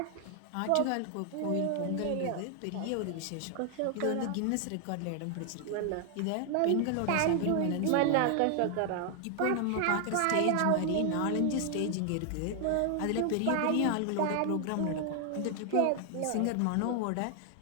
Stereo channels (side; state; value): both; different; correlation 0.00